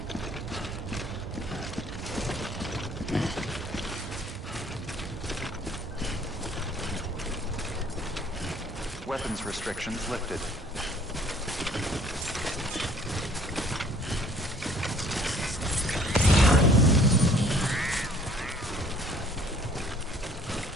Weapons restrictions lifted.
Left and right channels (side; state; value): both; normal; correlation 0.56